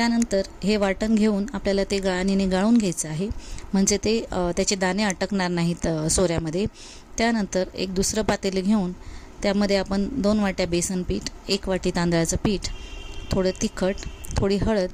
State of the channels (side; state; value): both; identical; correlation 1.00